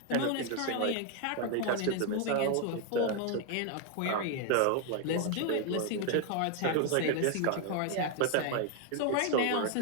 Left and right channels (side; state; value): both; different; correlation 0.01